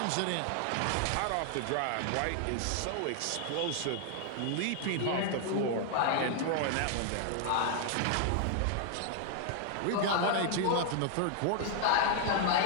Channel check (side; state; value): both; different; correlation 0.00